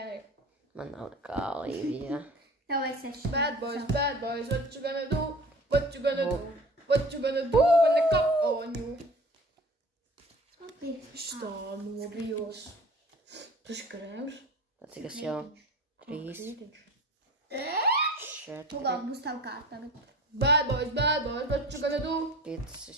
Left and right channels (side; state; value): both; normal; correlation 0.41